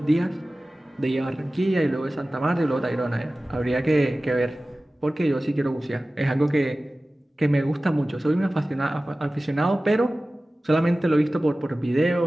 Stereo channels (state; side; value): normal; both; correlation 0.97